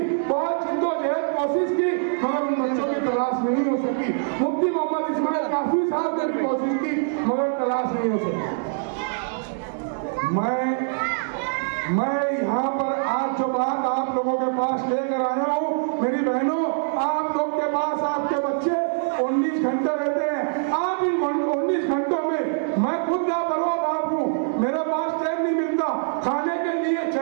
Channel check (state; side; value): silent; left; digital silence